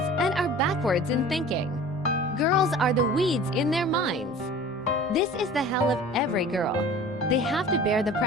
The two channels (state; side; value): noise; left; hum, 29 dB below the sound